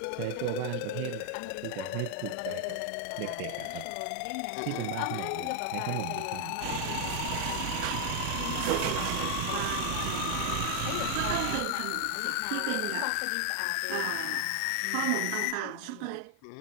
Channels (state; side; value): different; both; correlation 0.00